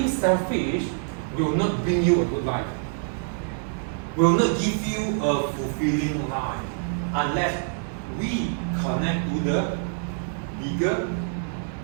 selfish will not bring you a good life. Will not give you a fulfilling life unless we connect to the bigger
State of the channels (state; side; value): silent; left; 61 dB below the other